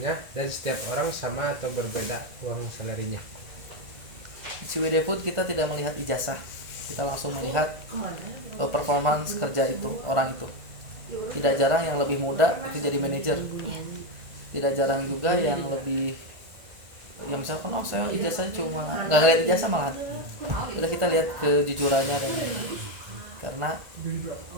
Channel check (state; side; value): late; left; 1.9 ms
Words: dan setiap orang sama atau berbeda uang salary-nya? Di CWD Food kita tidak melihat ijazah, kita langsung melihat performance kerja itu, orang itu. Tidak jarang yang lebih muda itu jadi manajer, tidak jarang juga yang lebih, yang misalkan saya ijazahnya cuma nggak ngeliat ijazah, malah udah kita lihat kejujurannya dan karena